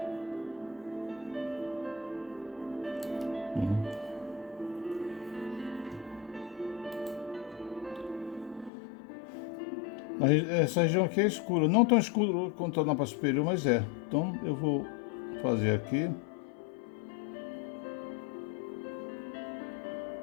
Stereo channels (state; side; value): drops out; right; at 8.7 s